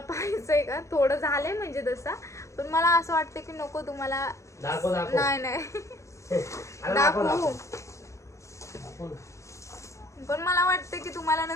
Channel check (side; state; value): right; late; 0.15 ms